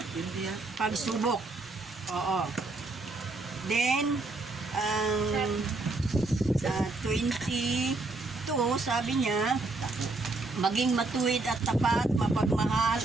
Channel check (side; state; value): left; quieter; 3.4 dB